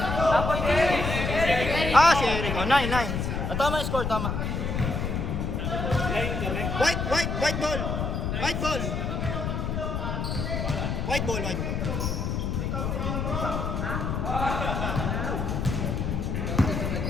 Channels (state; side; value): noise; left; rumble, 1 dB below the sound